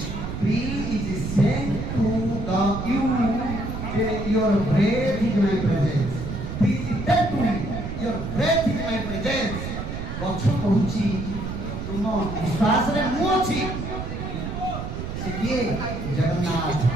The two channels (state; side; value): noise; right; rumble, 6 dB below the sound